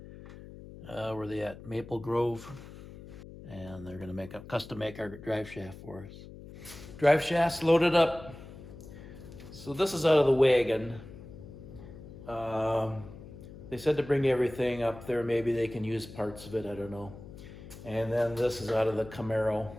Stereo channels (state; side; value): noise; left; hum, 15 dB below the sound